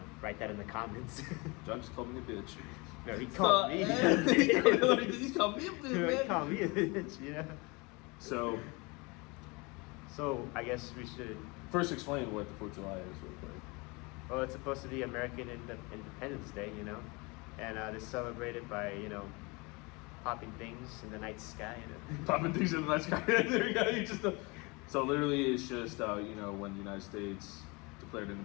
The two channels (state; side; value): quieter; right; 27.2 dB